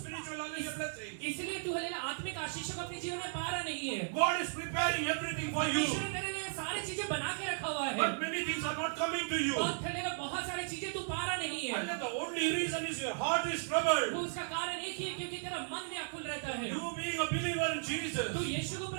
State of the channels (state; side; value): silent; left; digital silence